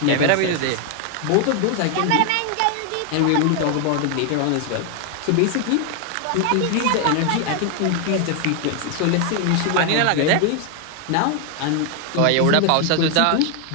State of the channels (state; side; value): different; both; correlation 0.00